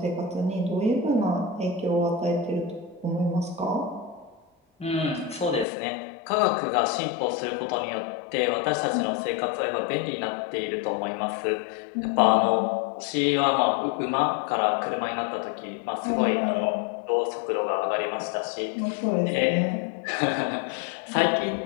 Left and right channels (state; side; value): drops out; right; at 5.7 s